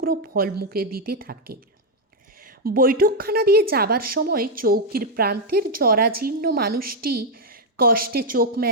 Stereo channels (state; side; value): normal; both; correlation 0.00